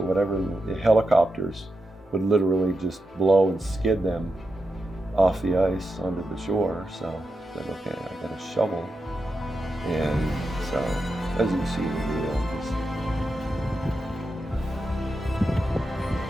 whatever. And the helicopters would literally just blow and skid them off the ice onto the shore. So I said, okay, I got a shovel. And so, as you can see in the video, just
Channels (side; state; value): both; normal; correlation 0.88